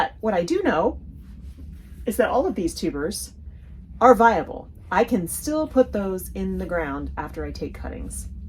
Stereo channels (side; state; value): both; identical; correlation 1.00